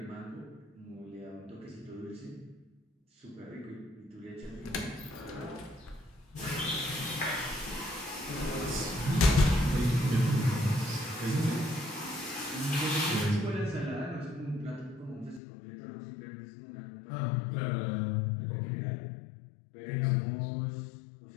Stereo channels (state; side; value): drops out; right; at 15.4 s